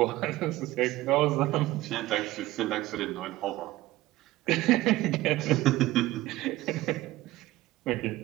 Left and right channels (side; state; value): left; quieter; 17.2 dB